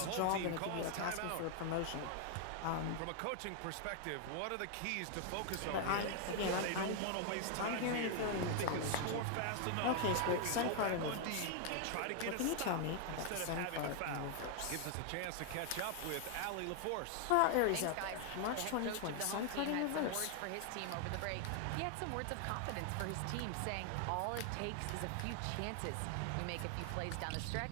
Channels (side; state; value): both; different; correlation 0.00